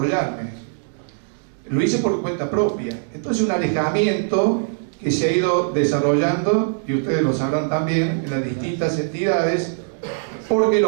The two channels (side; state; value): left; silent; 65 dB below the other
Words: lo hice por cuenta propia. Entonces un alejamiento que se ha ido desarrollando, y ustedes lo sabrán también, en las distintas entidades, porque